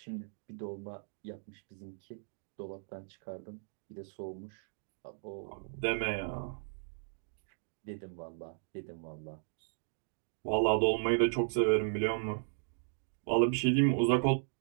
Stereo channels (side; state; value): left; silent; digital silence